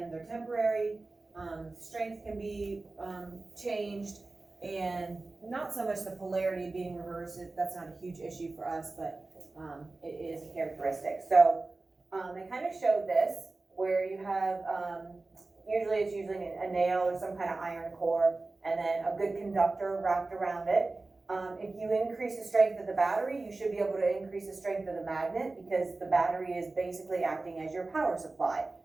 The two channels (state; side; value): quieter; left; 3.4 dB